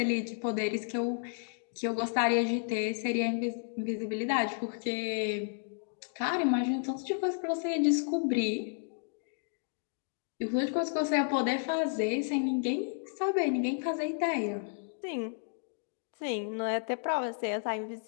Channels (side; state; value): right; silent; 56 dB below the other